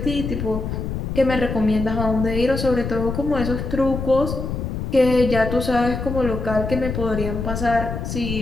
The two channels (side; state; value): left; noise; rumble, 4 dB below the sound